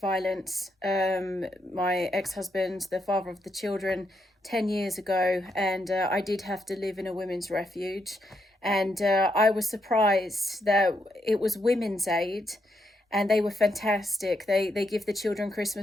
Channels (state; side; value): normal; both; correlation 0.80